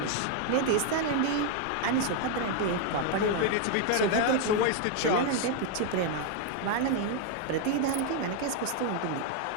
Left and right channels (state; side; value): different; both; correlation 0.01